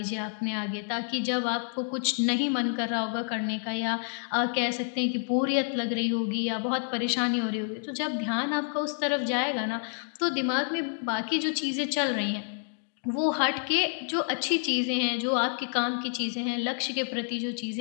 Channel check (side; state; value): right; silent; 59 dB below the other